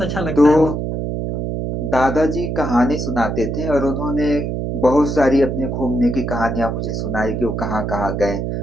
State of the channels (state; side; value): noise; right; hum, 2 dB below the sound